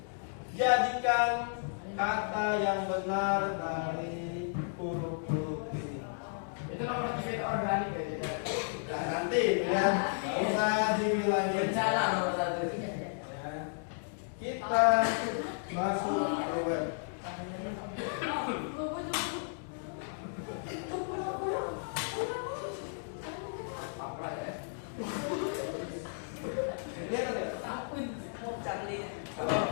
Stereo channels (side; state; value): right; silent; digital silence